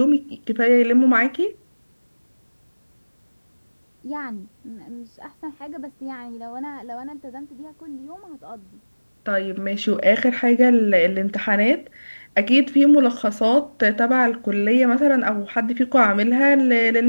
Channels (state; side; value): inverted; both; correlation -1.00